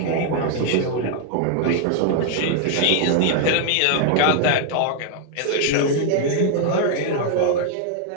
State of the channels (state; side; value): different; both; correlation 0.00